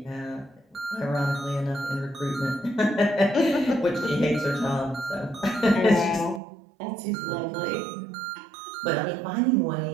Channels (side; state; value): left; drops out; at 6.4 s